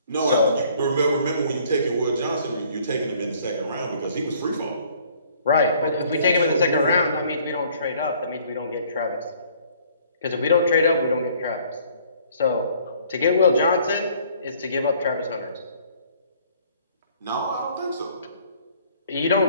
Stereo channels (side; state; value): both; inverted; correlation -0.58